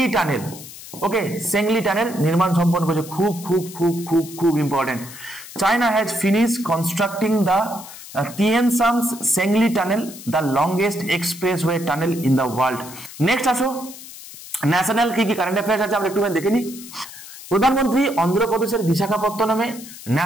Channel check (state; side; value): noise; left; hiss, 15 dB below the sound